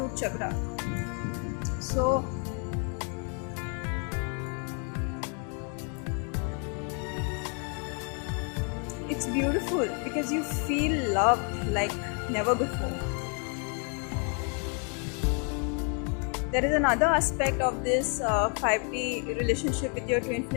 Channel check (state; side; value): quieter; right; 39.4 dB